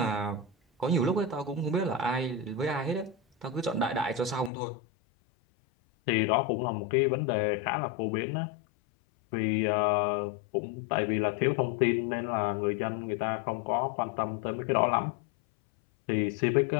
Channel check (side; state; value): right; drops out; at 4.5 s